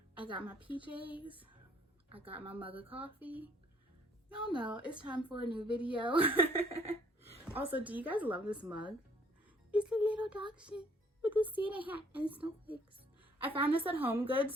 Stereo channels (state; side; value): normal; both; correlation 0.62